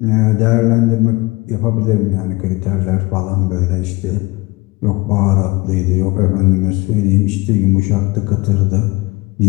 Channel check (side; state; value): right; quieter; 23.0 dB